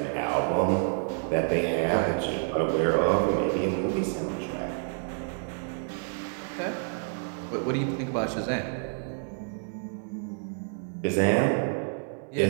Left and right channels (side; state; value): left; silent; 59 dB below the other